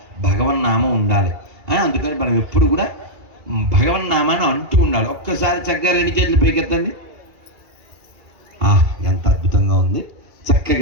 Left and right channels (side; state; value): left; late; 2.4 ms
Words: భగవన్నామం ఉండాలి. అందుకని మనం ఎప్పుడు కూడా భగవన్నామాన్ని అంటూ ఉండాలి. ఒక్కసారి చక్కగా 2 చేతులు పైకెత్తండి. ఎంత అద్భుతంగా ఉంది.